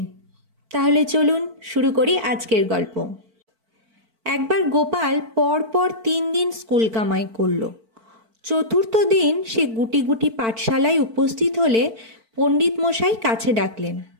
তাহলে চলুন শুরু করি আজকের গল্প। একবার গোপাল পরপর 3 দিন স্কুল কামাই করল। চতুর্থ দিন সে গুটি গুটি পাঠশালায় উপস্থিত হলে পণ্ডিত মশাই কাছে ডাকলেন।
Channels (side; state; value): left; late; 4.5 ms